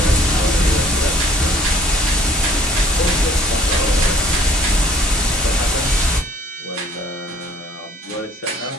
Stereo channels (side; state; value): both; normal; correlation 0.56